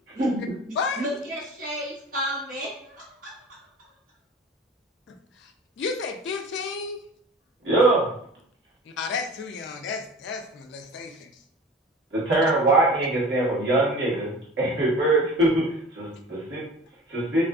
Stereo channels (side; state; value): both; normal; correlation 0.40